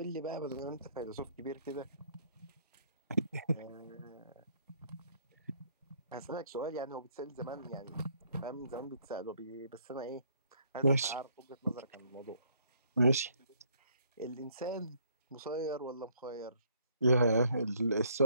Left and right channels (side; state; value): both; inverted; correlation -0.65